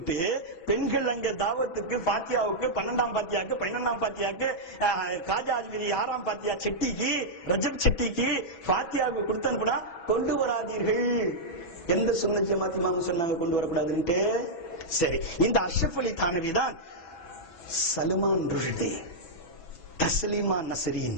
பெண்கள் அங்க தாவத்துக்கு ஃபாத்தியாவுக்கு 12ஆம் ஃபாத்தியாக்கு 11ஆம் ஃபாத்தியாக்கு காஜா அஜ்மீரி 6ஆம் ஃபாத்தியா செட்டிக்கு ரஜப் செட்டிக்கு ஃபாத்தியாவுக்கு கொடுத்து அனுப்புனா கொண்டு வராதீர்கள். எந்த சுன்னத் ஜமாத் இமாம் சொன்னாங்க கொண்டு வரக்கூடாதுன்ட்டு? சரி, இந்த அஷ்ரஃப் அலி தானவி தான் சல்மான் ருஷ்தி, தஸ்லீமா நஸ்ரீன்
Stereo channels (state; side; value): late; right; 6.1 ms